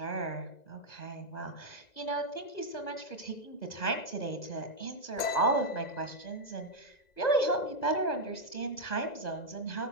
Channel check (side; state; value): right; late; 2.0 ms